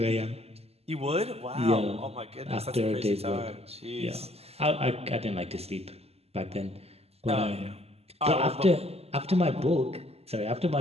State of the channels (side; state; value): left; late; 0.29 ms